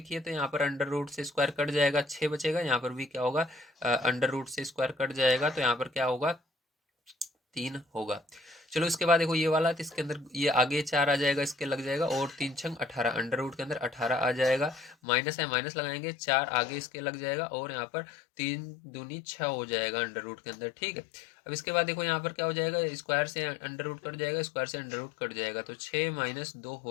तो यहाँ पर अंडर रूट से स्क्वायर कट जाएगा, 6 बचेगा। यहाँ पर भी क्या होगा, अंडर रूट से स्क्वायर कट जाएगा, तो यहाँ पर क्या होगा, 3 होगा। चलो इसके बाद देखो ये वाला, तो इसके अंदर ये आगे 4 आ जाएगा, इसके लग जाएगा, और 3 छंग 18, अंडर रूट के अंदर 18 आ जाएगा। माइनस है, माइनस लगाएंगे, 4 आगे इसके लग जाएगा, और यहाँ पर 3 दूनी 6 हो जाएगा अंडर रूट के अंदर, ठीक है। अब इसके बाद देखो यहाँ पर क्या हो जाएगा, स्क्वायर से अंडर रूट कट जाएगा, स्क्वायर से अंडर रूट कट जाएगा, तो 6 - 2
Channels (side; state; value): right; drops out; at 15.0 s